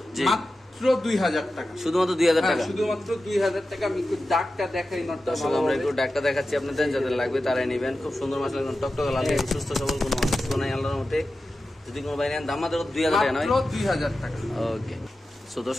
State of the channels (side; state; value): both; normal; correlation 0.93